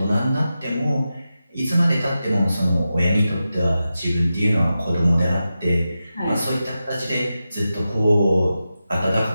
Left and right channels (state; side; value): inverted; both; correlation -0.91